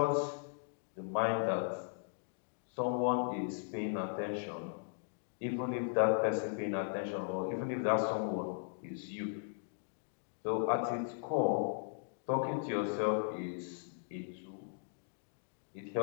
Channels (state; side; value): silent; right; digital silence